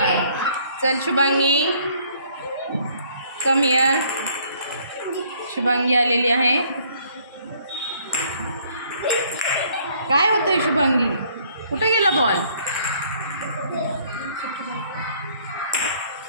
चल शुभांगी, कम हिअर. शुभांगी आलेली आहे. काय होतंय शुभांगी? कुठे गेला बॉल?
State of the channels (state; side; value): inverted; both; correlation -0.62